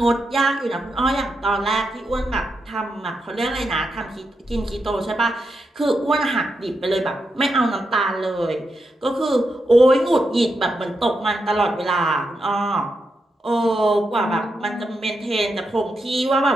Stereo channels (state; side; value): normal; both; correlation 0.85